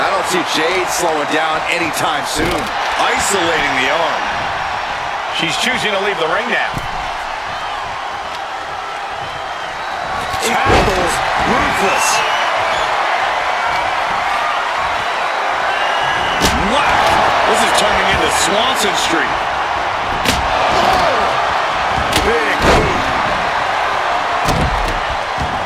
I don't see Jade slowing down anytime soon. Isolating the arm. She's choosing to leave the ring now. Tackles ruthless. Wow. This is turning into Swanson Street. Big boot.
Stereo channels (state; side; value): identical; both; correlation 1.00